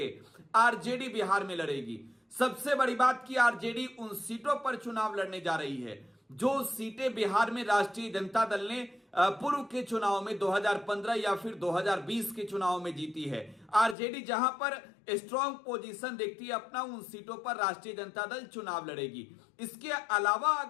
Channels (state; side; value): drops out; right; at 14.0 s